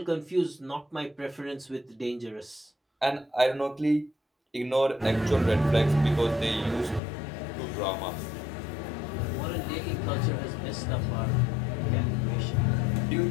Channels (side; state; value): right; drops out; at 7.0 s